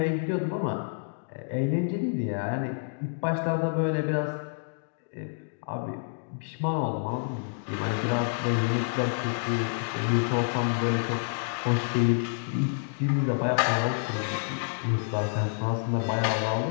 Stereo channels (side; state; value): right; silent; digital silence